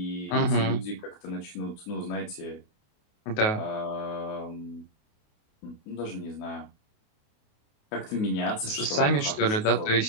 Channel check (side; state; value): right; late; 28 ms